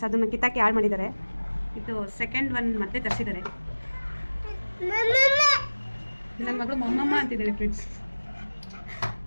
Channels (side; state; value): both; inverted; correlation -1.00